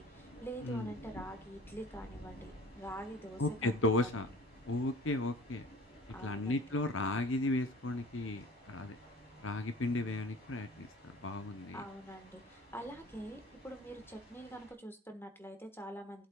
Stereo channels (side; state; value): both; normal; correlation 0.45